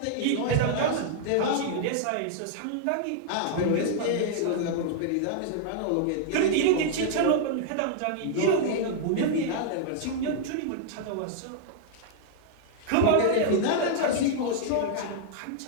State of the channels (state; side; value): different; both; correlation -0.01